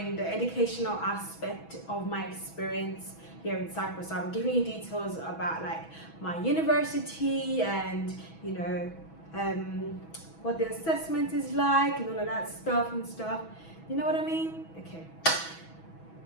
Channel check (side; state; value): right; late; 6.1 ms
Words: the educational aspect of my experience here in Cyprus. So I'm giving you details about like my university and what the assessment is like and all of that stuff. You know what I mean? Okay.